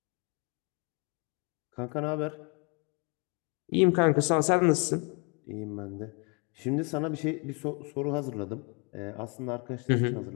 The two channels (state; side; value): quieter; right; 33.2 dB